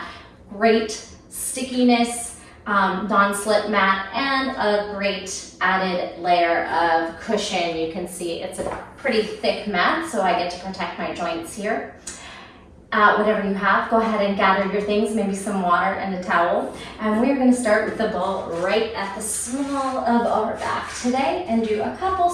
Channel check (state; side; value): identical; both; correlation 1.00